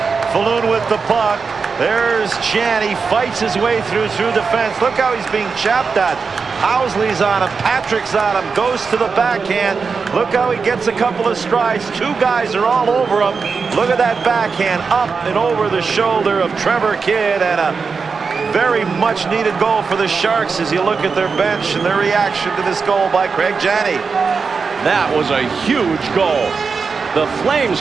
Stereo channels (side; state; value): left; quieter; 5.1 dB